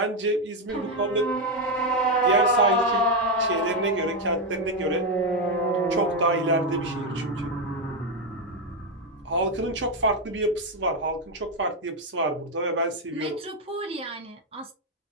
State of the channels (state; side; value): normal; both; correlation 0.06